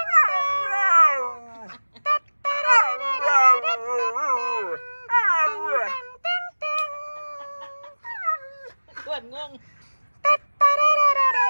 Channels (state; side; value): inverted; both; correlation -1.00